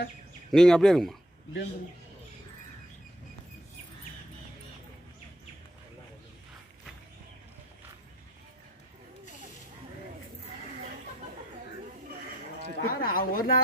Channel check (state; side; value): normal; both; correlation 0.65